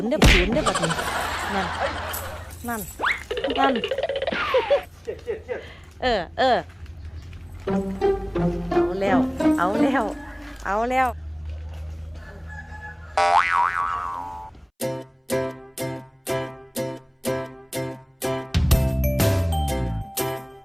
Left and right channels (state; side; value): identical; both; correlation 1.00